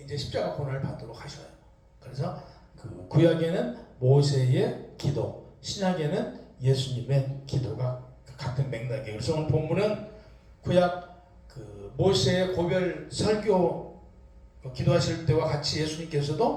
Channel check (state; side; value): identical; both; correlation 1.00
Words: 이제 십자가 고난을 받도록 하셔요. 그래서 그 구약에는 모세의 기도, 신약에는 예수님의 기도가 같은 맥락이에요. 그래서 오늘 본문은 구약 그 모세의 고별 설교 기도하실 때와 같이